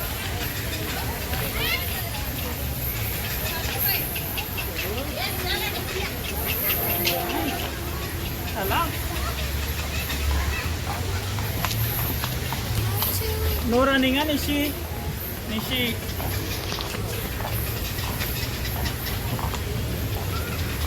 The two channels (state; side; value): identical; both; correlation 1.00